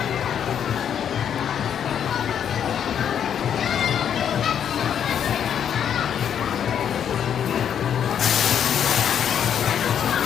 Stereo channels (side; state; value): right; quieter; 8.7 dB